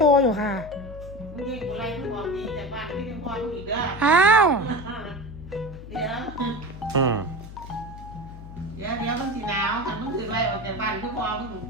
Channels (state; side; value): noise; left; hum, 13 dB below the sound